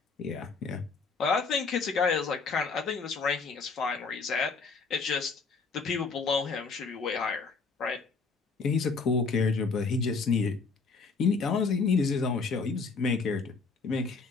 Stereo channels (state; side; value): quieter; right; 4.6 dB